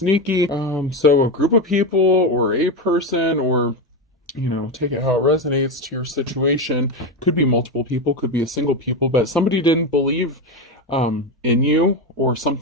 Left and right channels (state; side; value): normal; both; correlation 0.14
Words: So a group of people or a person, or take it how it resonates to your situation. Could be multiple people, could be a single people, but somebody didn't believe in you or